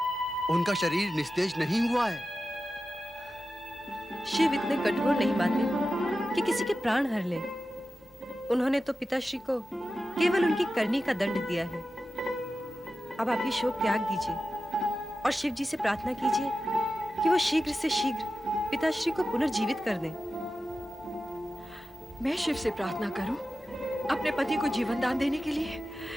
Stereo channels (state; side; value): normal; both; correlation 0.93